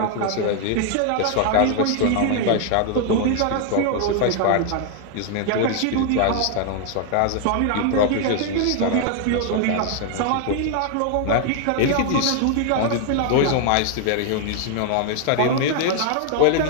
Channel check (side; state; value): both; different; correlation 0.00